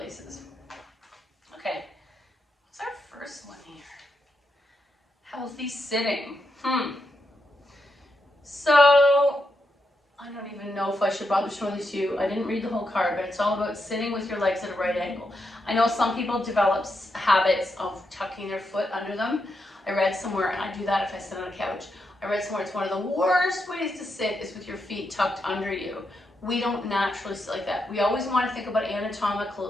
Okay, what's our first one here? Healthy sitting. So, I don't even know if I should bother showing this to you. I didn't read the whole card, but it's all about sitting with your legs at a right angle. I know some people develop habits of tucking their foot under them. I read somewhere, and I do that if I sit on a couch. I read somewhere it's one of the worst ways to sit is with your feet tucked under you. We don't naturally sit like that. We always want to think about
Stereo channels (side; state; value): both; normal; correlation 0.83